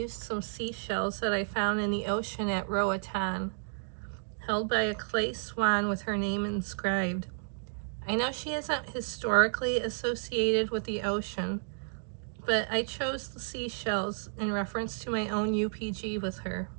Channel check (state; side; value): silent; left; digital silence